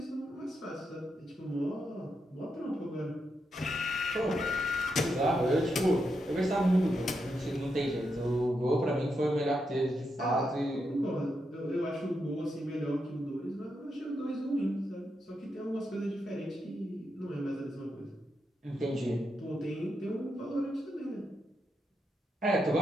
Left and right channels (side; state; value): both; normal; correlation 0.84